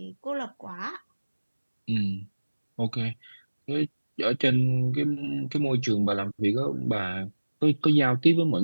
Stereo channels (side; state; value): both; inverted; correlation -1.00